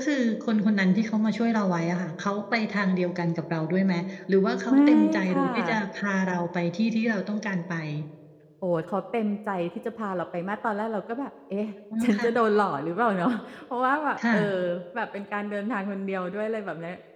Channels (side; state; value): both; identical; correlation 1.00